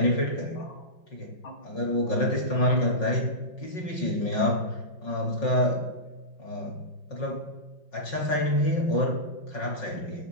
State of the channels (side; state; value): right; late; 5.5 ms